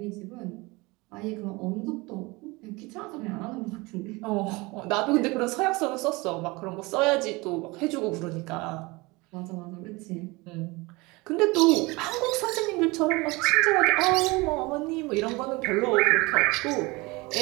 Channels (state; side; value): quieter; left; 24.0 dB